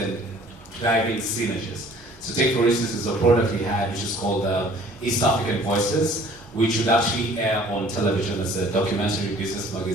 driving synergies. So take for instance, there's a product we had which is called East African Voices, which would actually air on television as a documentary business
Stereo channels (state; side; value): normal; both; correlation 0.53